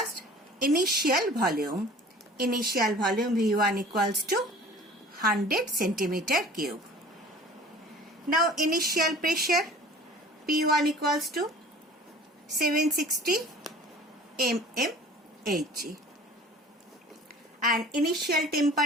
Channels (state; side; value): normal; both; correlation 0.46